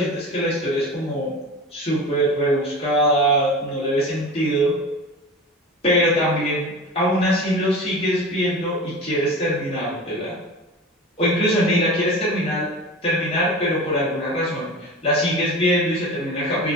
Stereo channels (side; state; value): both; normal; correlation 0.33